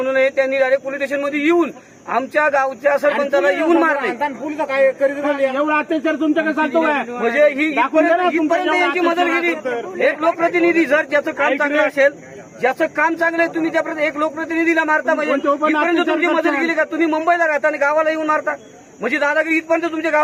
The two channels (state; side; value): identical; both; correlation 1.00